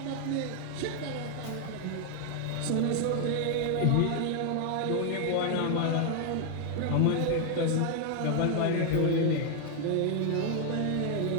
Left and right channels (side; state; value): both; different; correlation 0.00